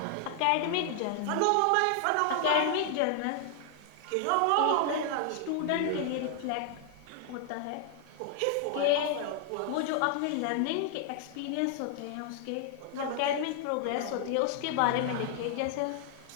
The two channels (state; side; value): different; both; correlation 0.00